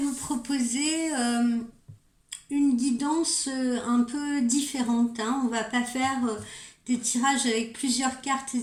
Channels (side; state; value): both; identical; correlation 1.00